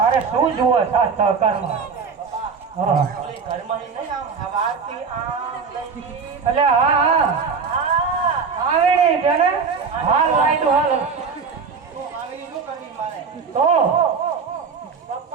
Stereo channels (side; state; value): left; quieter; 5.4 dB